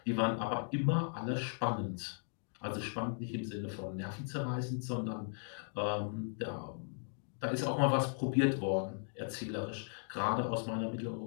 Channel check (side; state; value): right; silent; digital silence